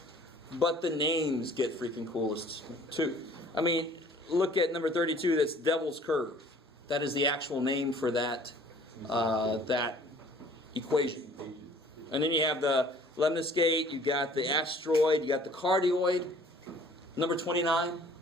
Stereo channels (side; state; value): both; normal; correlation 0.53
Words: but the names get freaking coolest too. I mean, look at number 32. That's Devil's Curve. That is the actual name for that that equation. And then you have the lemniscate. You got the asteroid. You got the cardioid. Number 29.